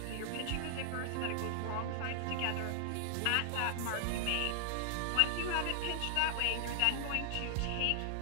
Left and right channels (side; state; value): both; different; correlation 0.00